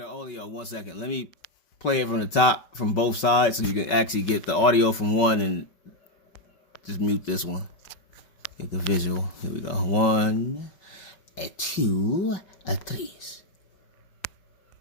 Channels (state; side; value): late; right; 5.3 ms